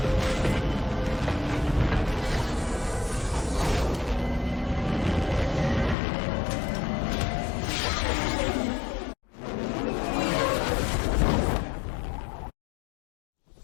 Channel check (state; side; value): drops out; right; at 6.0 s